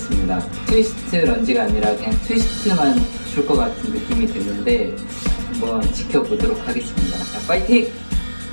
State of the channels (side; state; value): both; inverted; correlation -1.00